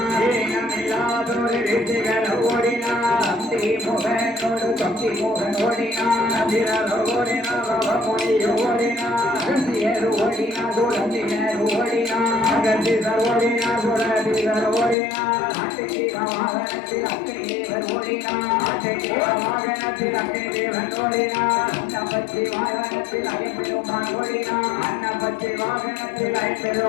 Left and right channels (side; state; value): right; drops out; at 15.0 s